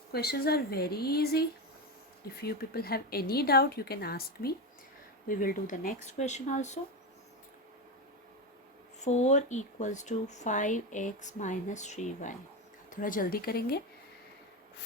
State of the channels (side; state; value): both; normal; correlation 0.16